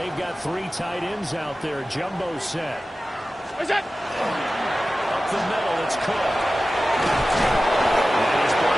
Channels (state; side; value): normal; both; correlation 0.95